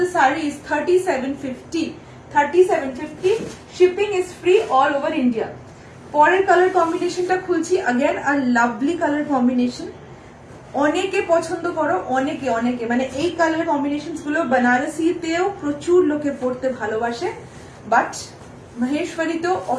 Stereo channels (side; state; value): both; identical; correlation 1.00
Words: the sari is 3750, 3750। Shipping is free all over India. পরের কালার কম্বিনেশনটা খুলছি। Again a lovely colour combination, অনেকে পছন্দ করো, অনেকে অনেকে মানে এই কালার কম্বিনেশনস গুলো বানারসিতেও প্রচুর লোকে পড়তে ভালোবাসে, বাট মহেশ্বরীতেও